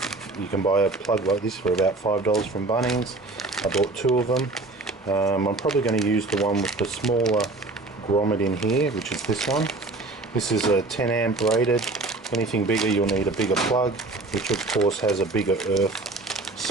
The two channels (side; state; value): left; quieter; 3.2 dB